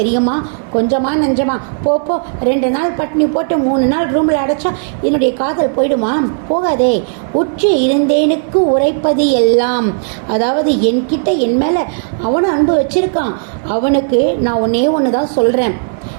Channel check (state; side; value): silent; left; digital silence